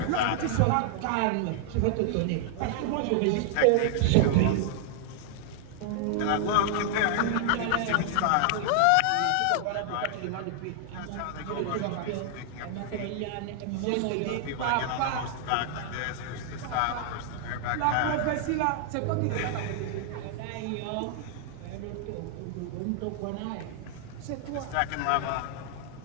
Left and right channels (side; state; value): both; different; correlation 0.00